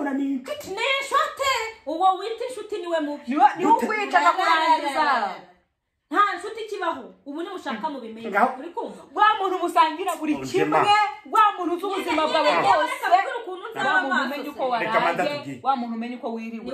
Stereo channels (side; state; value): both; identical; correlation 1.00